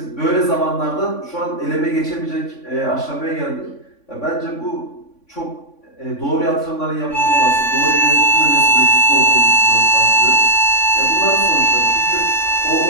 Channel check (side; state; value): right; late; 3.5 ms